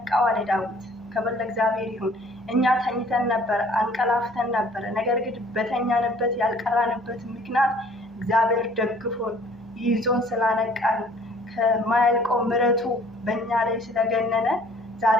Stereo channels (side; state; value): both; normal; correlation 0.55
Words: አለ ዳዊት። ክብር ለእግዚአብሔር ይሁን። እኛ ተኝተን ነበር፣ አንቀላፍተን ነበር። ነገር ግን በተኛንበት ያልቀራንበት ምክንያት እግዚአብሔር ደግፎን ይዞን ስላነቃን ከማያልቀው ምሕረቱ በእኛ ላይ ስለገነነ